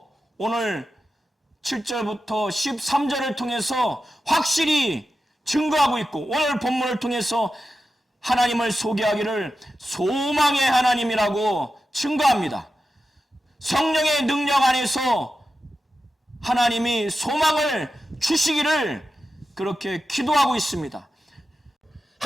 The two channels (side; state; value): both; normal; correlation 0.91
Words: 오늘 7절부터 13절을 통해서 확실히 증거하고 있고 오늘 본문을 통해서 하나님을 소개하기를 소망의 하나님이라고 증거합니다. 성령의 능력 안에서 하나님이 소망을 주시기를 그렇게 기도하고 있습니다.